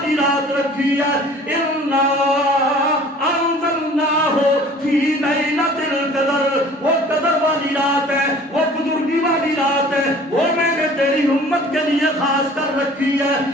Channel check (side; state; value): both; normal; correlation 0.48